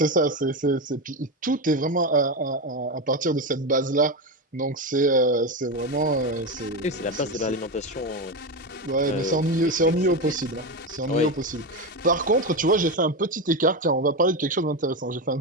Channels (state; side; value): normal; both; correlation 0.15